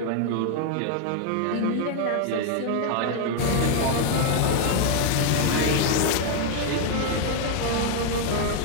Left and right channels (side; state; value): both; different; correlation 0.00